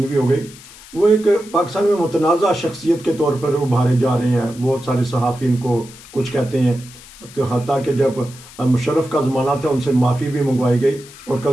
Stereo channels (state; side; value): noise; left; hiss, 19 dB below the sound